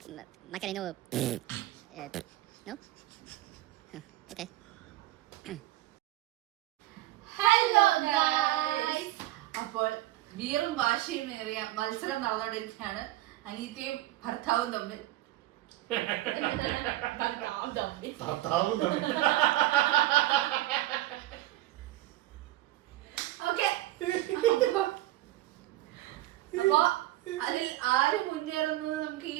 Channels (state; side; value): quieter; left; 16.1 dB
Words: Macarena. No? Okay. Hello guys. അപ്പോൾ വീറും വാശിയും ഏറിയ മത്സരം നടന്നുകൊണ്ടിരിക്കുകയാണ് അനീറ്റയും ഭർത്താവും തമ്മിൽ. ഓക്കെ, അപ്പോ അതിൽ ആര് മുന്നേറുന്നത് നമുക്ക് ഈ